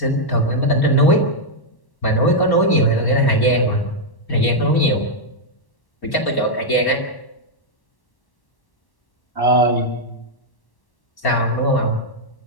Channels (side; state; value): right; late; 1.1 ms